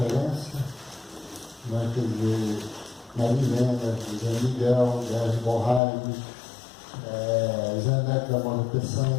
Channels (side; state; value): right; drops out; at 5.8 s